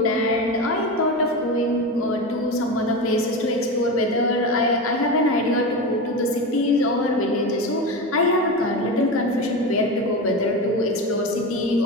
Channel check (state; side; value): normal; both; correlation 0.22